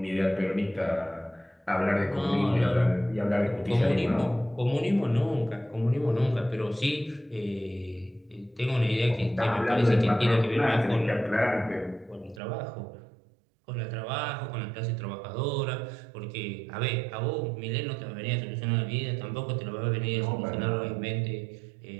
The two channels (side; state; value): left; drops out; at 12.4 s